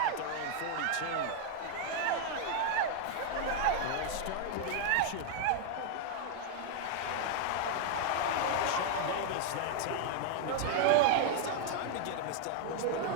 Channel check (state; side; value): different; both; correlation 0.00